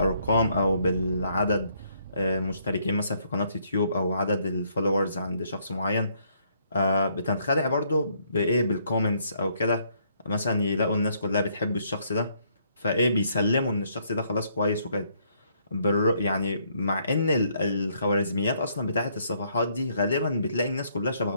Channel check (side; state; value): both; inverted; correlation -0.70